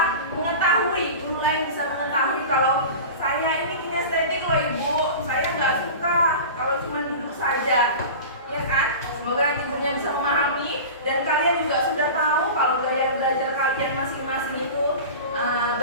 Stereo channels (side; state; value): both; inverted; correlation -0.33